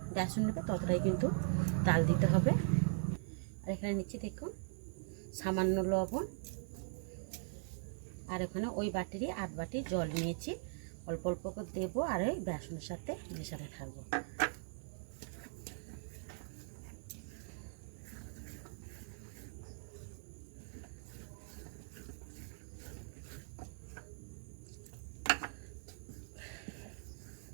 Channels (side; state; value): left; silent; 51 dB below the other